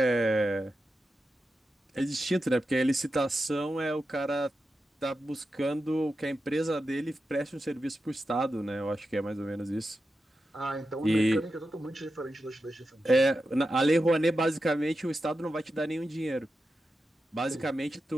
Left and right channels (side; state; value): both; normal; correlation 0.90